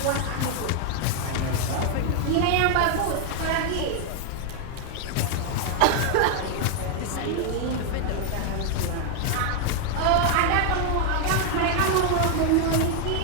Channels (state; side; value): different; both; correlation 0.00